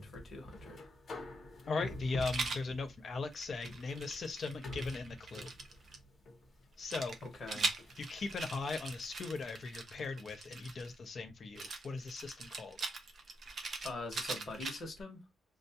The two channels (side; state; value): both; normal; correlation 0.83